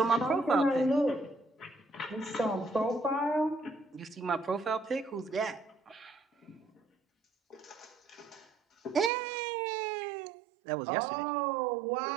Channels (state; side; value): drops out; left; at 9.1 s